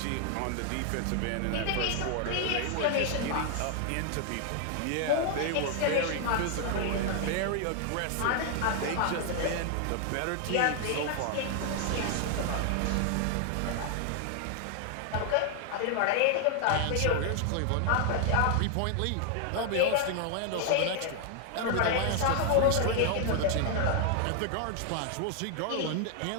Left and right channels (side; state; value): both; different; correlation 0.00